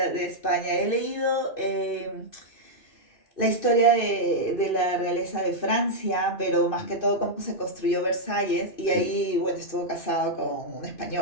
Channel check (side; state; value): right; late; 2.5 ms